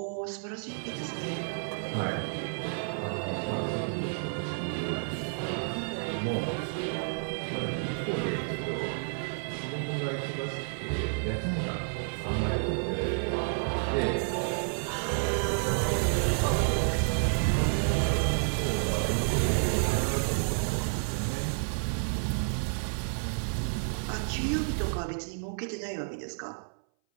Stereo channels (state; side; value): silent; left; 57 dB below the other